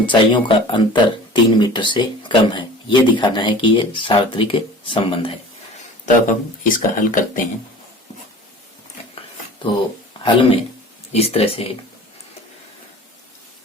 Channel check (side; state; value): both; normal; correlation 0.42